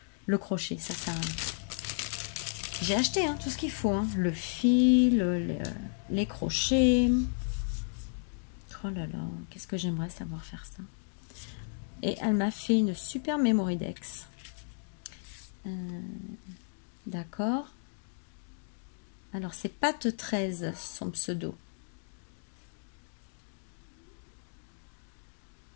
le crochet. Ça j'ai acheté tout ce qu'il faut. Le fil, les crochets. Oh là là, qu'est-ce que j'aimerais savoir faire ça. Et elle m'a fait une super Memory Dex. D'accord. Alors c'est Pat 13 son pseudo.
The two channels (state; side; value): silent; right; digital silence